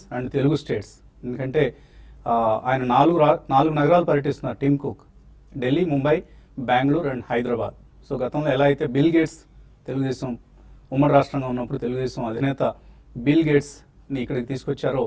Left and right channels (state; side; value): identical; both; correlation 1.00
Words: and Telugu states. ఎందుకంటే ఆయన నాలుగు నగరాలు పర్యటిస్తున్నారు Tim Cook, Delhi, Mumbai, Bengaluru and Hyderabad. So గతంలో ఎలా అయితే బిల్ గేట్స్ తెలుగుదేశం ఉమ్మడి రాష్ట్రంగా ఉన్నప్పుడు తెలుగుదేశం అధినేత బిల్ గేట్స్ని ఇక్కడికి తీసుకొచ్చారో,